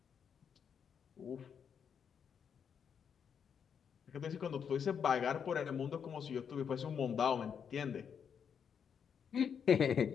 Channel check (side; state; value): right; quieter; 7.3 dB